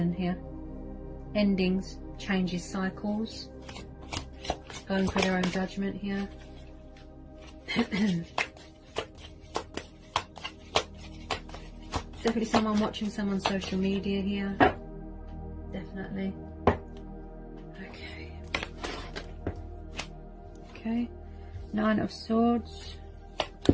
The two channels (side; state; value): both; identical; correlation 1.00